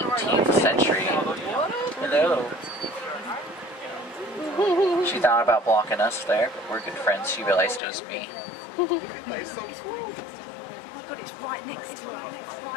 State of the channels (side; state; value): right; drops out; at 7.8 s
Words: century. Hello. She thought about blocking us there, but we're good friends. She realized it was me.